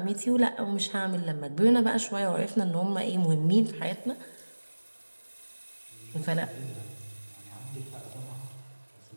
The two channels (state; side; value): inverted; both; correlation -1.00